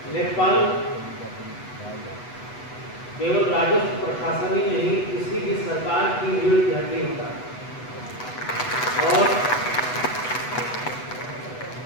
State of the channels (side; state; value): right; late; 8.1 ms